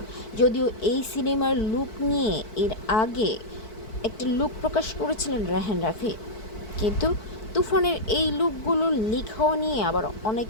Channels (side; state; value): right; late; 4.5 ms